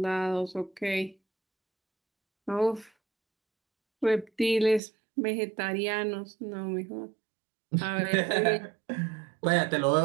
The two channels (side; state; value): left; drops out; at 4.8 s